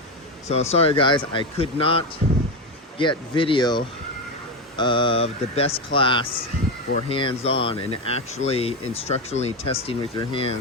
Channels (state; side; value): normal; both; correlation 0.13